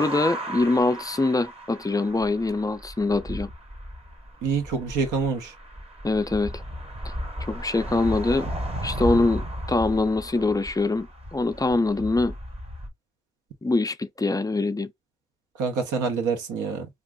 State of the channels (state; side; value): normal; both; correlation 0.78